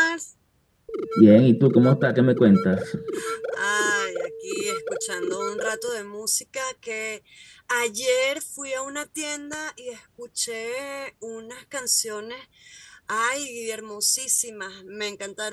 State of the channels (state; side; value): identical; both; correlation 1.00